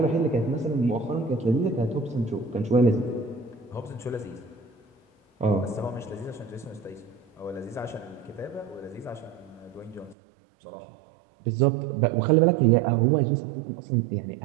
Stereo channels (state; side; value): drops out; left; at 10.2 s